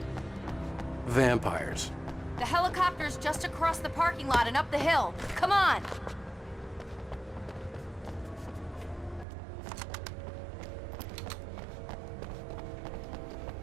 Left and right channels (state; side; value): drops out; left; at 9.2 s